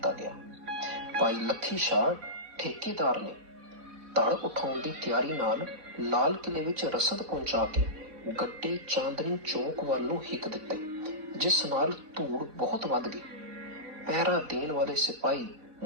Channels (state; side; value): late; left; 4.1 ms